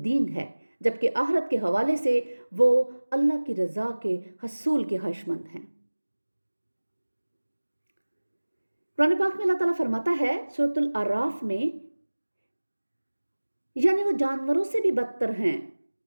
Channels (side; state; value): both; inverted; correlation -1.00